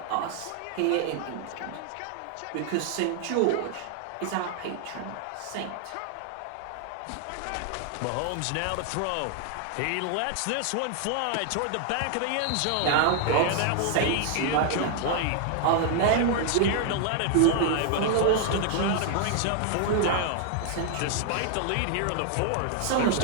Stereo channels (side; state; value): both; different; correlation 0.00